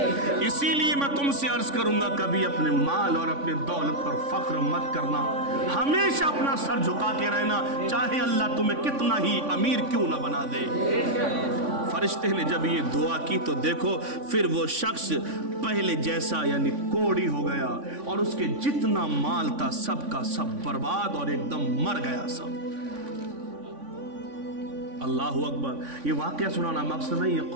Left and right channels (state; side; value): late; left; 3.5 ms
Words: इसीलिए मैं तुमसे अर्ज करूंगा, कभी अपने माल और अपने दौलत पर फख्र मत करना, हमेशा अपना सर झुका के रहना, चाहे अल्लाह तुम्हें कितना ही अमीर क्यों ना बना दे। फरिश्ते ने जब ये दुआ की तो देखो फिर वो शख्स पहले जैसा यानी कोड़ी हो गया और उसके जितना माल था सब का सब बर्बाद और एकदम मर गया सब। अल्लाहु अकबर। ये वाक़या सुनाना मकसद है, ये